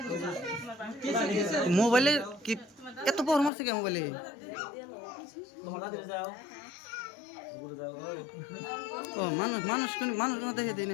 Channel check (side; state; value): right; drops out; at 3.5 s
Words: মোবাইলে কি এত পর মারছে কে মোবাইলে ও মানুষ মানুষ মানুষ না দেখে দিই